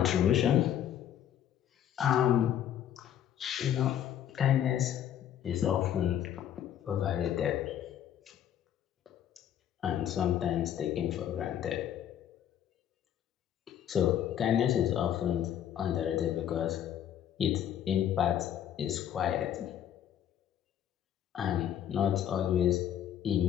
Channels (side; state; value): right; quieter; 10.3 dB